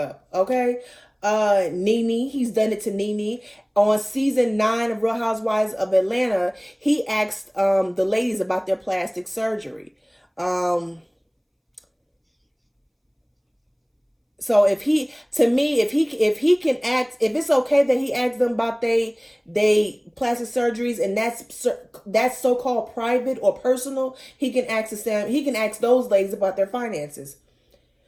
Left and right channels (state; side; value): identical; both; correlation 1.00